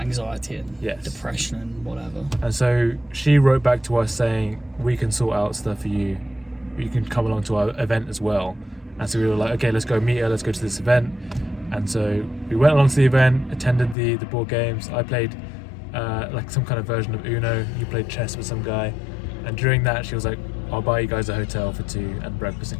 and Yes. depression and whatever. and so she wrote back to us saying, we can sort out stuff for you. You can come along to our event as well. And so we were like, okay, let's go meet her. Let's go to this event. And so we went along to the event, attended the board games. I played like some kind of version of Uno. You played chess with some guy. And during that, she was like, I'll buy you guys a hotel for 2 and breakfast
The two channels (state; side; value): drops out; right; at 14.0 s